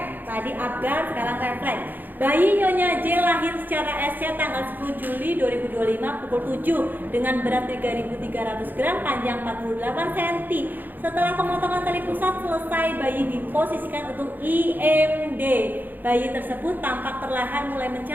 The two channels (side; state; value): left; late; 0.087 ms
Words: Tadi Apgar, sekarang refleks. Bayi Nyonya J lahir secara SC tanggal 10 Juli 2025 pukul 7 dengan berat 3.300 gram, panjang 48 cm. Setelah pemotongan tali pusat selesai, bayi diposisikan untuk IMD. Bayi tersebut tampak perlahan mulai